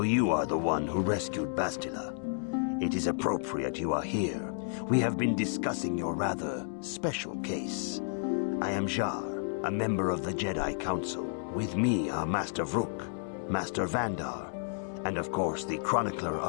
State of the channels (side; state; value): right; silent; digital silence